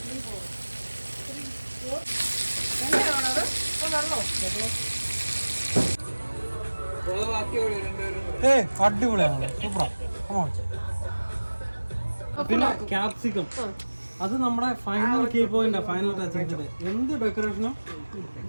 അടിപൊളിയാണ്, സൂപ്പറാ. പിന്നെ ക്യാപ്സിക്കം, അത് നമ്മുടെ final key point, final touching. എന്ത് ഡെക്കറേഷനും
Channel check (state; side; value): inverted; both; correlation -1.00